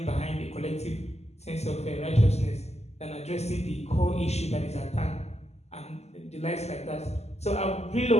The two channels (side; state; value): right; late; 0.31 ms